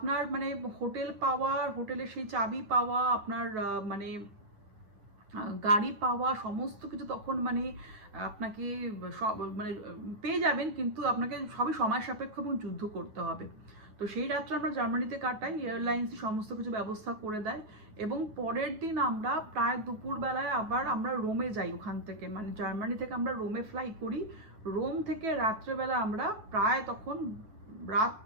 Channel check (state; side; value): late; left; 9.4 ms